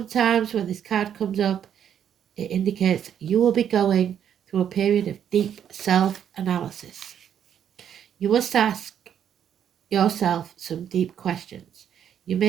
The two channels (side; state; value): left; quieter; 9.1 dB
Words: when this card comes up, it indicates you will be going through a period of deep self-analysis. You must ask yourself some deep questions. You